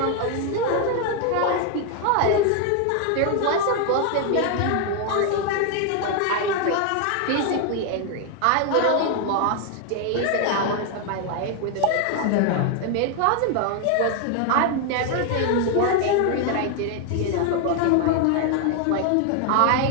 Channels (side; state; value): both; different; correlation 0.00